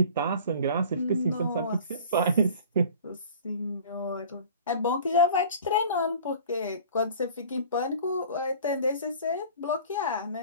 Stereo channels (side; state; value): both; inverted; correlation -0.44